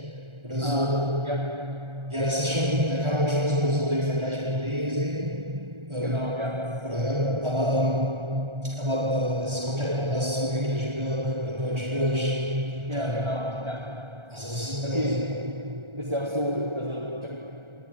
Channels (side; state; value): left; late; 1.4 ms